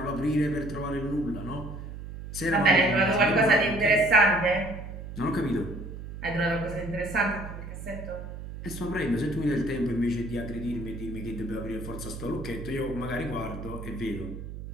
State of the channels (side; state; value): right; noise; hum, 10 dB below the sound